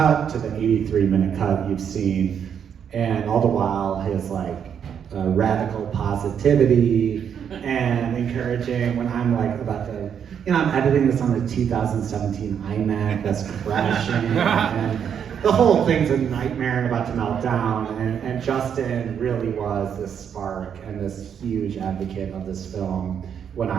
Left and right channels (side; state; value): left; quieter; 8.1 dB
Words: to the 83-minute cut you've seen, and all the while his like radical positivity and encouraging when I'm like about to, I'm editing this on the 2017 iMac that's crashing, and the whole thing's a nightmare and about to melt down, and Justin really was this spark and this huge advocate of this film when